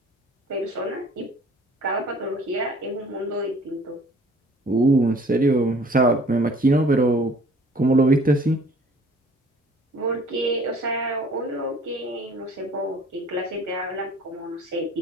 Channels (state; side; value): normal; both; correlation 0.53